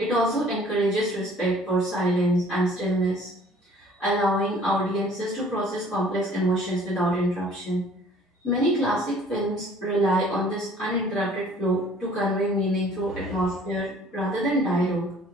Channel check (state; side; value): normal; both; correlation 0.54